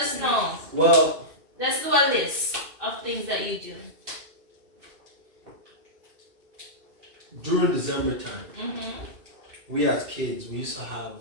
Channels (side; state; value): left; late; 2.6 ms